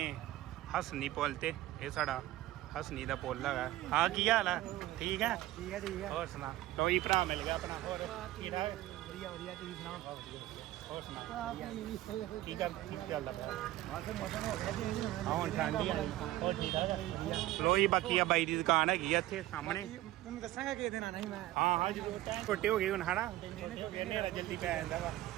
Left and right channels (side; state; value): left; quieter; 15.8 dB